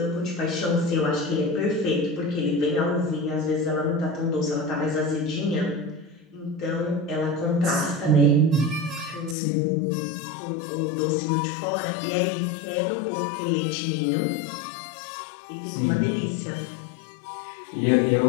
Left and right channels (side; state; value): right; drops out; at 9.3 s